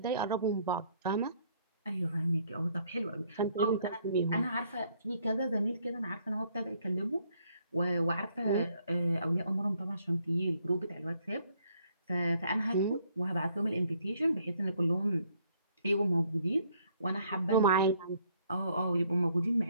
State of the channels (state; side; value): inverted; both; correlation -0.67